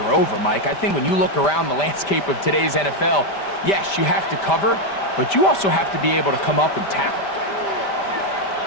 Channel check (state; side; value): late; right; 5.1 ms